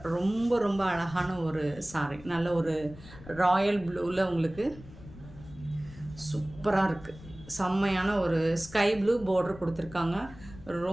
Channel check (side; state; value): left; noise; rumble, 18 dB below the sound